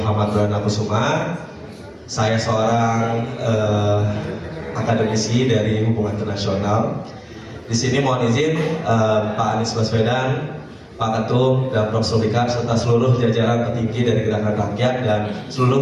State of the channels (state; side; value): identical; both; correlation 1.00